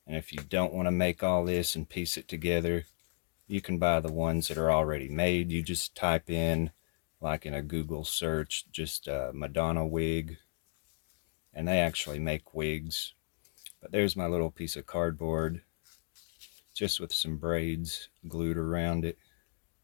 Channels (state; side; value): silent; right; digital silence